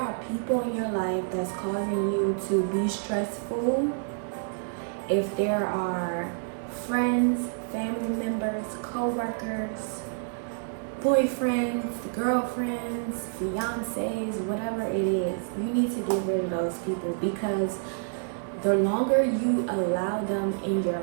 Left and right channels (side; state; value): left; silent; 59 dB below the other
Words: people in your life that's causing you to be stressful, if there are friends, family members, co-workers, boyfriends, girlfriends, fiancés, whatever it is, you need to get rid of those people, because the longer you allow them in your